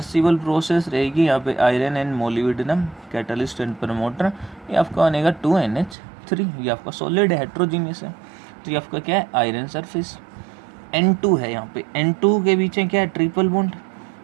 प्रोसेस रहेगी। यहाँ पे iron and molybdenum catalyst and promoter, ये आपका बनेगा 2NH3। ये आपका सॉलिड हेट्रोजीनियस है, तो ये आपका क्या है, आयरन सरफेस। N2 है, यहाँ पे N2 के पीछे क्या है, ट्रिपल बॉन्ड।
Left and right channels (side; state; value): left; drops out; at 6.0 s